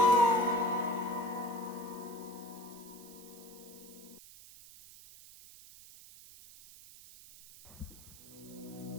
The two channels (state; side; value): noise; right; hiss, 18 dB below the sound